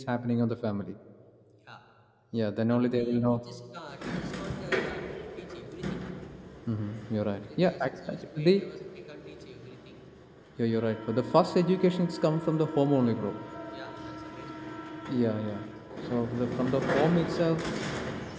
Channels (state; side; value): identical; both; correlation 1.00